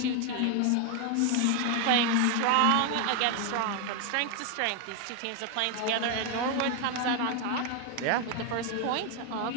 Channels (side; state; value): both; different; correlation 0.01